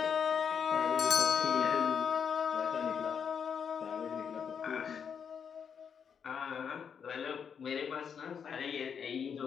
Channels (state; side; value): quieter; right; 7.1 dB